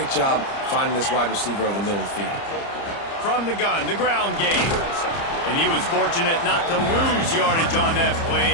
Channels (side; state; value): right; late; 30 ms